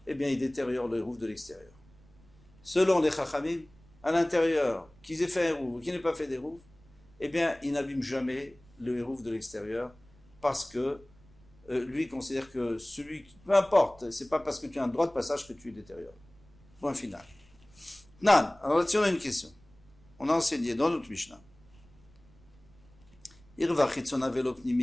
eh bien, ils détériorent le hérouf de l'extérieur. Selon les chachamim, à l'intérieur, qu'ils aient fait un hérouf ou qu'ils n'aient pas fait d'hérouf, eh bien, il n'abîme jamais le hérouf de l'extérieur parce que lui considère que celui qui, peu importe, c'est pas parce que tu as un droit de passage que tu détériores. Point final. Nan, alors là-dessus on a une question. On a enseigné dans notre Mishnah. Irva chitzona velo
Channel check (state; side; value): noise; right; rumble, 27 dB below the sound